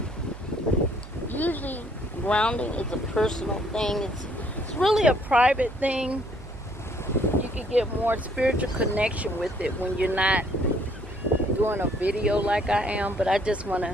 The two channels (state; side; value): noise; right; hum, 16 dB below the sound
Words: Usually, grounding is a personal thing. It's really a private thing. You can get more spiritual connection with it when you're not doing a video like I am. But I just want